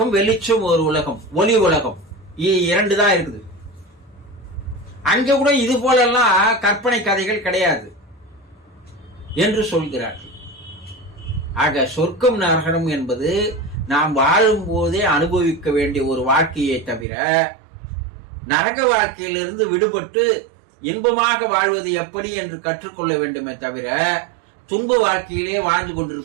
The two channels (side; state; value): left; drops out; at 17.1 s